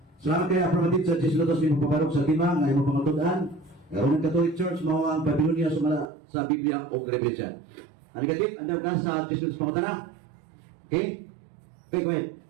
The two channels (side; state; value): left; drops out; at 6.1 s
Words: Salamat kay Aprobatid sa Jesilotos ni Paparok sa Lima, nga imo pangatudan. Roman Catholic Church, mao ang Babylonia sumala sa Biblia o referensya. Ano katit? Ano ka sa Jesilotos pangutana? Okay? Okay, go ahead.